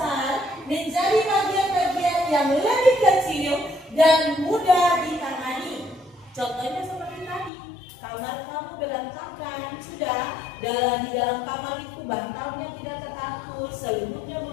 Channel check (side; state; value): right; drops out; at 7.5 s